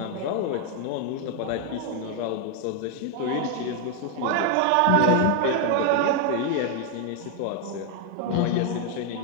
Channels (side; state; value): both; different; correlation 0.01